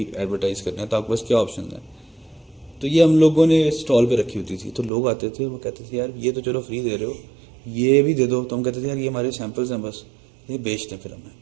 ایڈورٹائز کرنا ہے، تو آپ کے پاس کیا آپشنز ہیں. تو یہ ہم لوگوں نے اسٹال پہ رکھی ہوتی تھی. تو لوگ آتے تھے، وہ کہتے تھے یار یہ تو چلو فری دے رہے ہو، یہ بھی دے دو. تو ہم کہتے تھے یار یہ ہمارے سیمپلز ہیں، بس یہ بیچ دیں. پھر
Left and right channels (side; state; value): left; drops out; at 4.9 s